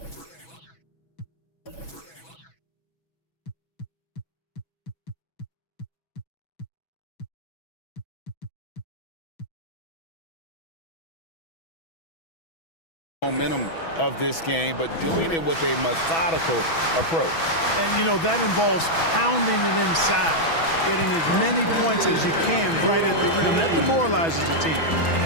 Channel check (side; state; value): right; late; 6.1 ms